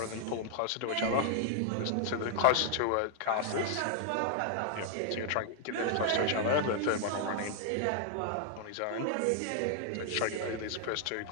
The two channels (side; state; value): both; different; correlation 0.00